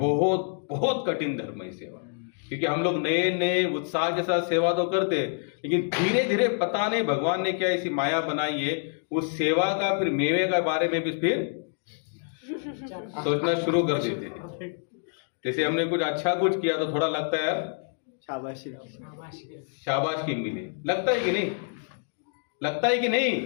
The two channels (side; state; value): right; silent; 60 dB below the other